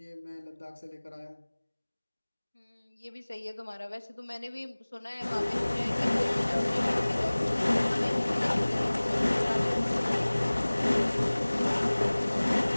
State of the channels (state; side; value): inverted; both; correlation -1.00